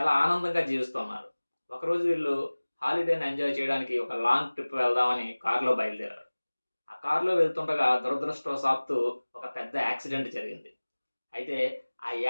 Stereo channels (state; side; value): inverted; both; correlation -1.00